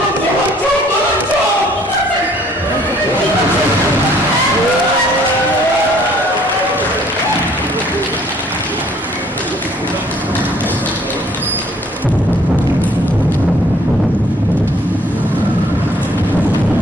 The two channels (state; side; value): normal; both; correlation 0.60